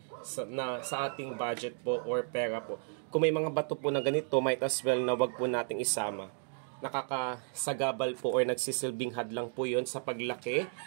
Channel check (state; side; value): silent; left; 56 dB below the other